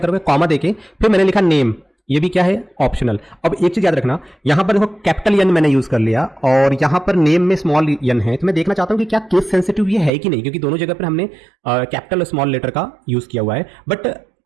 कॉमा देके फिर मैंने लिखा नेम, ये भी क्या है ऑप्शनल। अब एक चीज याद रखना, यहाँ पर देखो कैपिटल एन मैंने यूज कर लिया और यहाँ पर नेम में स्मॉल एन है। तो मैं देखना चाहता हूँ कि क्या केस सेंसिटिव ये है कि नहीं, क्योंकि दोनों जगह पर हमने कैपिटल और स्मॉल लेटर का यूज किया हुआ है। बट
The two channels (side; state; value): left; drops out; at 10.1 s